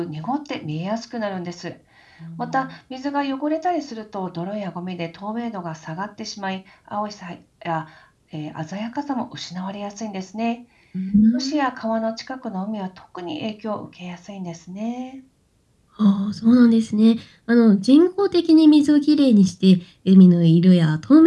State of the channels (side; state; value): both; identical; correlation 1.00